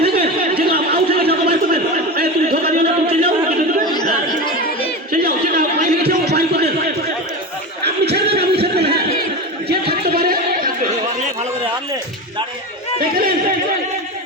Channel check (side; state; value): both; normal; correlation 0.23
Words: থাকেন, যেগুলো আউট হয়ে গেছে বাইক করবেন। তুমি ধোকা দিও না, তুমি চলে যাও, চলে যাও, যেটা বাইক গেছে ও বাইক করে দেন। আপনি ছেড়ে দেন, আপনি ছেড়ে দেন। হ্যাঁ যে থাকতে পারে ভালো করে দেখলেন